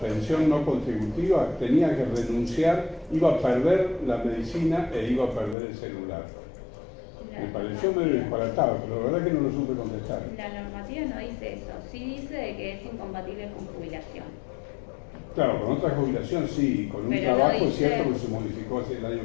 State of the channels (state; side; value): drops out; right; at 5.6 s